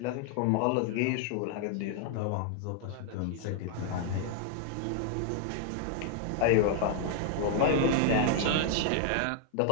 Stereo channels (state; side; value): different; both; correlation 0.00